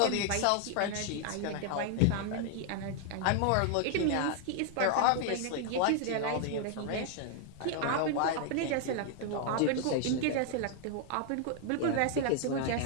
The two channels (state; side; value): different; both; correlation 0.00